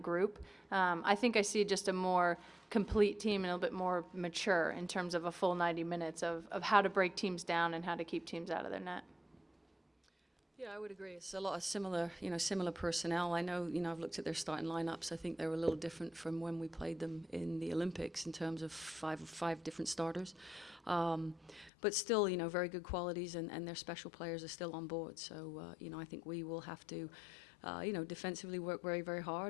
I think I see just a more complete team and a little bit more mature in terms of a full 90 minutes of how to break teams down and how to keep teams out of their net. Yeah, I would agree. It's a lot of similar personnel. I know, I've looked at their starting lineups. I think they were a little different from when we played them in the Olympics in terms of five different starters. But still, very good qualities, and their special players are still on board. So, I think we will have to, defensively work very, very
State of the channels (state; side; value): drops out; right; at 21.7 s